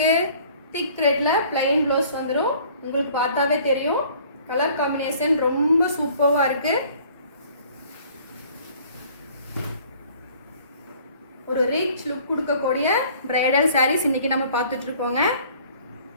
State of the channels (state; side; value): inverted; both; correlation -0.54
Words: திக் ரெட்ல பிளைன் ப்ளவுஸ் வந்துடும். உங்களுக்கு பார்த்தாவே தெரியும். கலர் காம்பினேஷன் ரொம்ப சூப்பராக இருக்கு. ஒரு ரிச் லுக் கொடுக்கக்கூடிய பிரைடல் சாரீஸ் இன்னைக்கு நம்ம பார்த்துட்டு இருக்கோங்க.